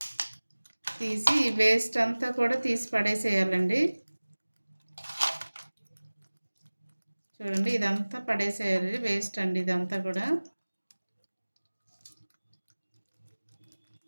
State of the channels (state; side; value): inverted; both; correlation -1.00